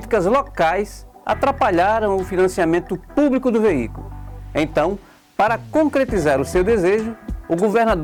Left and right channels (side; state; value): both; identical; correlation 1.00